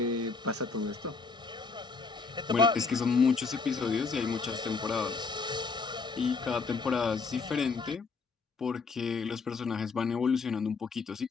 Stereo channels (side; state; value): right; quieter; 4.6 dB